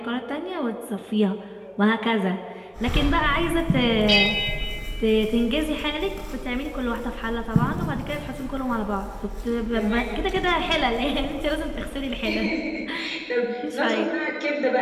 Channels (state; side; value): identical; both; correlation 1.00